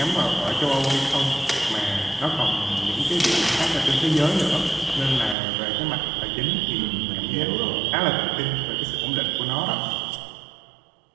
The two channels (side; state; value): left; drops out; at 5.4 s